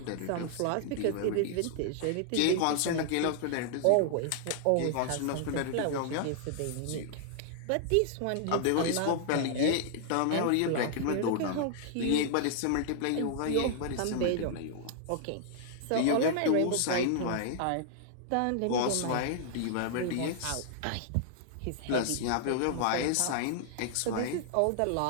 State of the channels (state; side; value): different; both; correlation -0.01